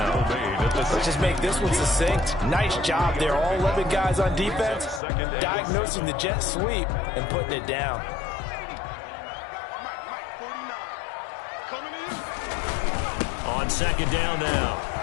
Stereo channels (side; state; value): right; drops out; at 5.0 s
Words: Let's just make this one succinct. Nice job there. All 11 guys on defense diagnosing the jet sweep and putting it down. On 2nd down now.